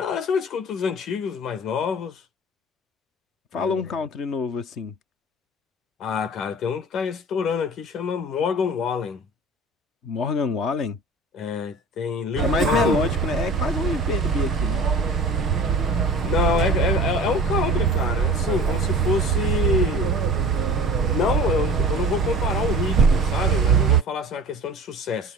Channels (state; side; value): normal; both; correlation 0.40